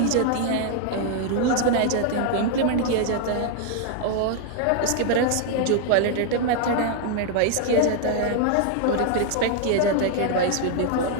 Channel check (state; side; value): different; both; correlation 0.00